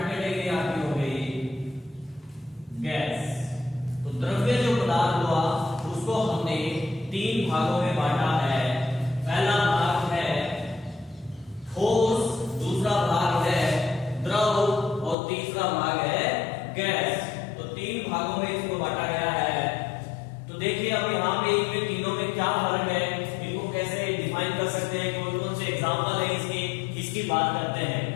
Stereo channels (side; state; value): right; drops out; at 15.2 s